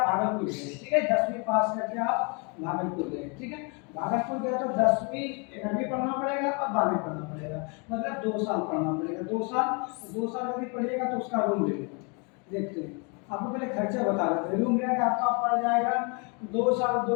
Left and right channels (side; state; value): right; quieter; 33.5 dB